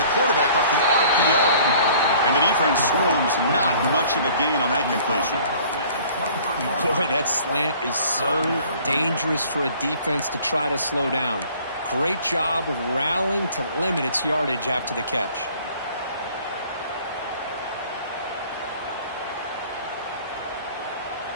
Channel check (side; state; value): both; inverted; correlation -0.52